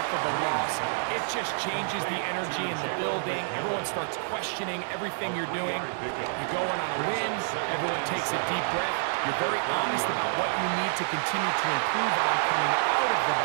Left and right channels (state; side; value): silent; left; 59 dB below the other